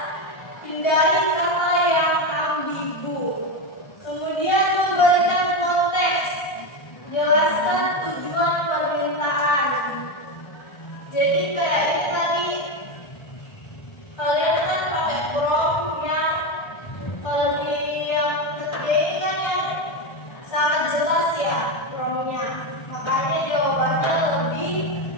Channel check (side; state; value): right; late; 1.3 ms